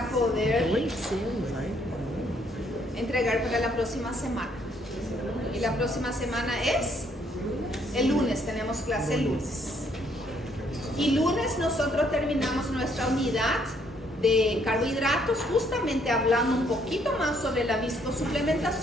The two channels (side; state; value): both; normal; correlation 0.68